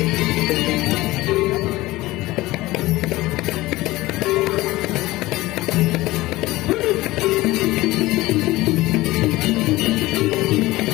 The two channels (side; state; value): right; quieter; 18.7 dB